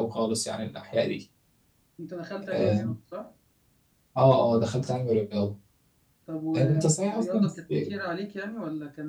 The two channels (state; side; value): identical; both; correlation 1.00